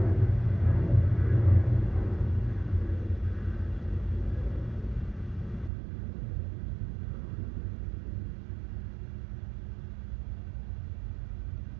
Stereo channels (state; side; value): drops out; left; at 5.7 s